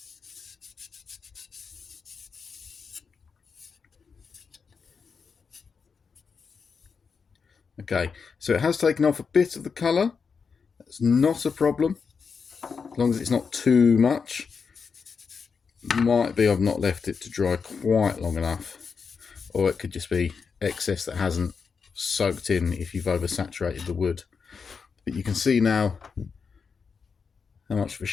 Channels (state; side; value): quieter; right; 5.6 dB